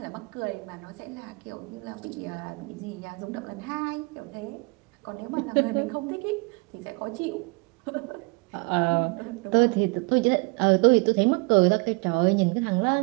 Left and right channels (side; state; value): left; quieter; 29.9 dB